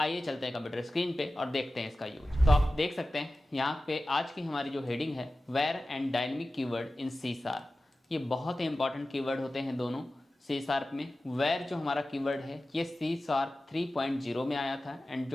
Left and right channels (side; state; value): both; normal; correlation 0.95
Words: चलते हैं कंप्यूटर स्क्रीन पे और देखते हैं इसका यूज। तो आप देख सकते हैं यहाँ पे आज की हमारी जो हेडिंग है, var and dynamic keyword in C sharp. ये बहुत ही इंपॉर्टेंट कीवर्ड होते हैं दोनों सी शार्प में। वेयर जो हमारा कीवर्ड है ये सी शार्प 3.0 में आया था, एंड